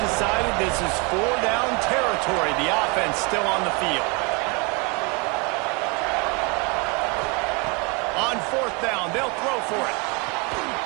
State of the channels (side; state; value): left; quieter; 29.6 dB